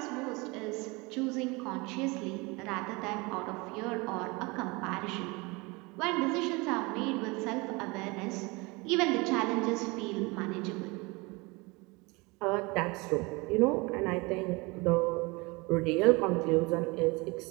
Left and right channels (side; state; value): left; quieter; 26.0 dB